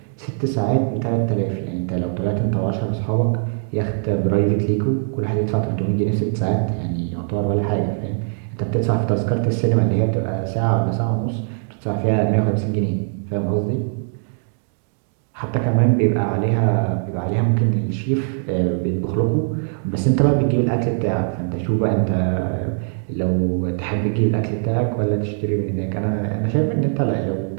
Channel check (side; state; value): left; silent; 65 dB below the other